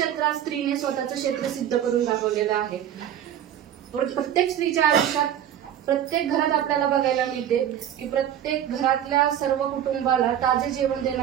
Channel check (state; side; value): quieter; left; 10.4 dB